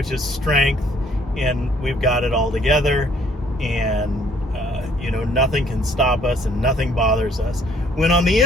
is strength, and we've got it all together, and nothing can stop us and nothing bothers us. When on the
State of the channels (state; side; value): normal; both; correlation 0.62